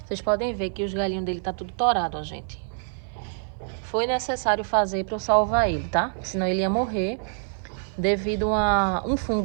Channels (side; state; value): left; silent; 58 dB below the other